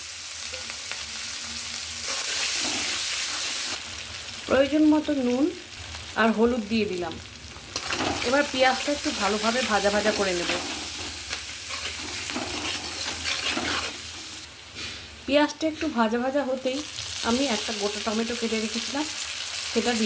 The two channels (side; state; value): both; identical; correlation 1.00